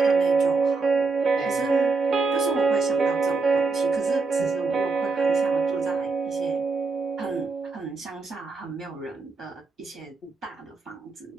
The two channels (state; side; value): quieter; left; 4.1 dB